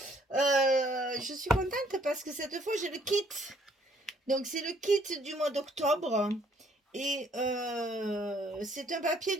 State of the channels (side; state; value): both; normal; correlation 0.64